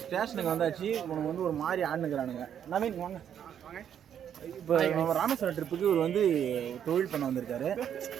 ஸ்டேஷனுக்கு வந்தாச்சு. உனக்கு வந்து ஒரு மாதிரி ஆடுனுக்குறானுங்க. நவீன் வாங்க. இப்போ நம்ம ராமேஸ்வரம் ட்ரிப்புக்கு இவர் வந்து தொழில் பண்ண வந்திருக்காரு.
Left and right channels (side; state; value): left; quieter; 9.1 dB